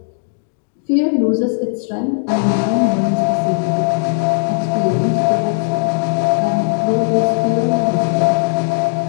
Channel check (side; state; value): right; silent; digital silence